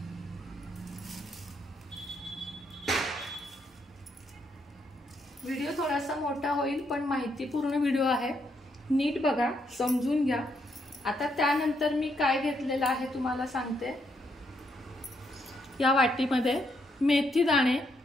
व्हिडिओ थोडासा मोठा होईल पण माहितीपूर्ण व्हिडिओ आहे, नीट बघा, समजून घ्या। आता त्यानंतर मी काय घेतलेलं आहे तुम्हाला सांगते। या वाटीमध्ये मेथी दाणे,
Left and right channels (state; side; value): normal; both; correlation 0.76